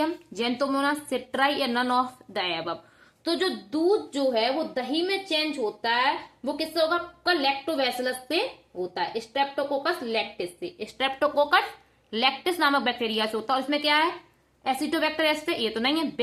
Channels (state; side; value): identical; both; correlation 1.00